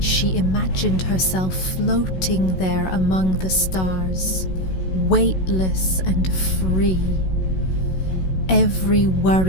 imagined herself floating there among the stars, weightless and free. Every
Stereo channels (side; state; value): right; late; 16 ms